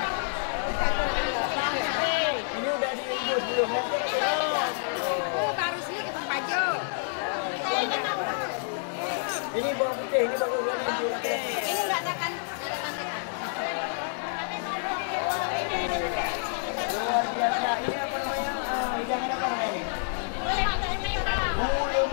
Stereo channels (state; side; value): silent; right; digital silence